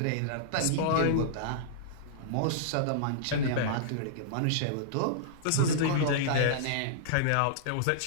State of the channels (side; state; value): both; different; correlation -0.02